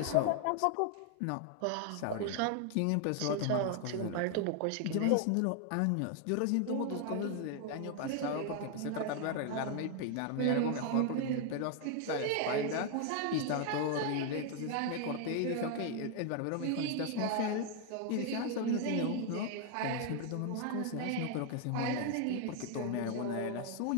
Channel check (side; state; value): both; different; correlation 0.00